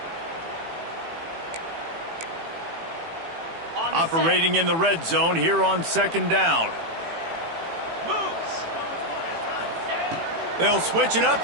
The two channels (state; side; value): late; left; 18 ms